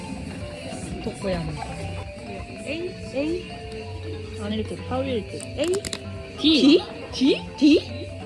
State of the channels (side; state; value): both; identical; correlation 1.00